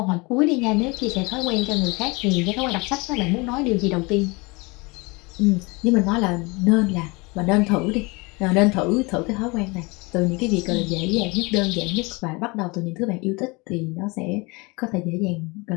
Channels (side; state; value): right; quieter; 26.7 dB